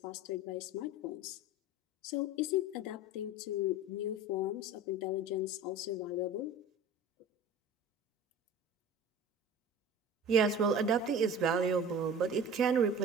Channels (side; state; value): both; normal; correlation 0.38